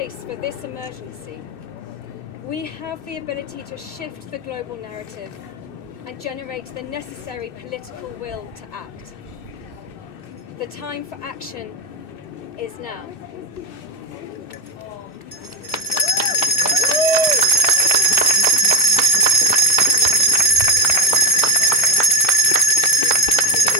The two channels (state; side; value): late; right; 2.6 ms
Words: for this emergency, we have the ability to shift the global narrative and generate the necessary political will to act. The time for action is now.